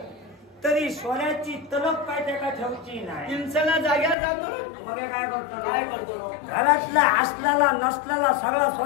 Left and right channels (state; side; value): drops out; right; at 4.2 s